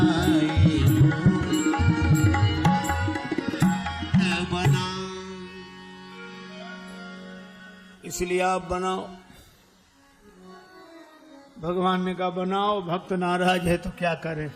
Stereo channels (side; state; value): both; identical; correlation 1.00